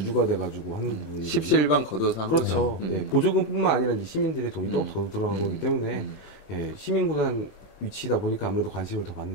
돼가지고 하는 부분이 십시일반 걷어서 한 그렇죠. 거죠. 예, 보조금뿐만 아니라 이제 시민들의 돈이 또 더 들어간 거기 때문에 예, 시민구단 위치다 보니까 아무래도 관심을 더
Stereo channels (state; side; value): late; right; 21 ms